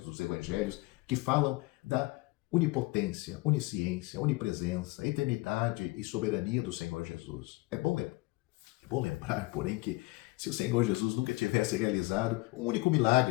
evangelhos que falam da onipotência, onisciência, onipresença, eternidade e soberania do Senhor Jesus. É bom lembrar, porém, que Se o Senhor Jesus nunca tivesse realizado um único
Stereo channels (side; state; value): right; quieter; 22.7 dB